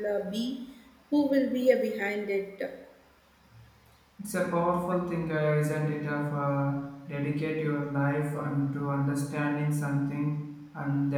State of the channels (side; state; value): both; identical; correlation 1.00